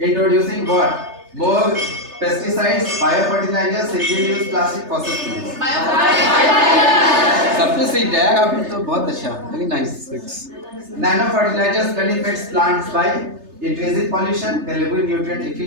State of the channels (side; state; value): left; late; 3.3 ms